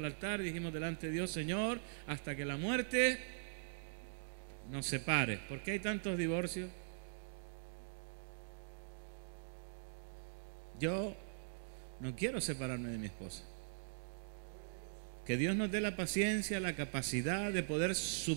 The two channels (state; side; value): silent; left; digital silence